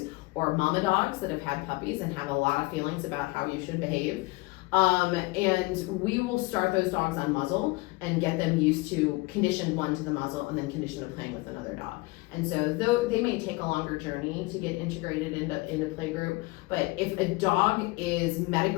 or mama dogs that have had puppies and have a lot of feelings about how you should behave. And we will start those dogs on muzzle and get them used to condition 1 to the muzzle and then condition to playing with another dog. And so though they may take a longer journey to get integrated into play group, but if a dog is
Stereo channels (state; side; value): quieter; right; 23.2 dB